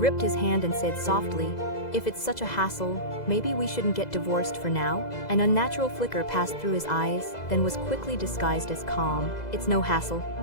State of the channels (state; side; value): late; right; 2.0 ms